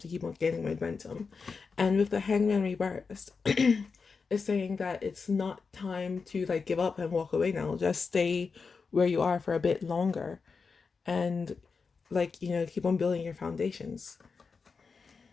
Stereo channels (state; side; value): quieter; right; 5.0 dB